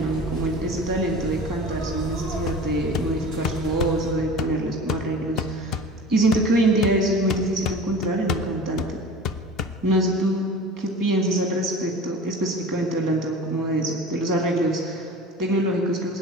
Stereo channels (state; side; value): normal; both; correlation 0.37